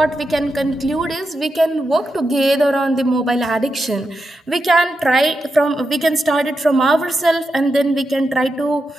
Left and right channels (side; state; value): both; normal; correlation 0.87